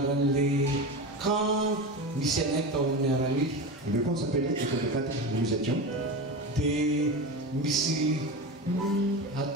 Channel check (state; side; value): normal; both; correlation 0.24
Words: Le camp s'appelait École de cadre où nous étions.